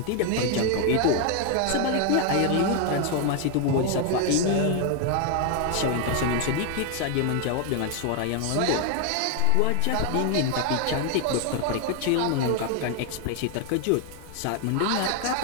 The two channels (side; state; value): both; different; correlation 0.01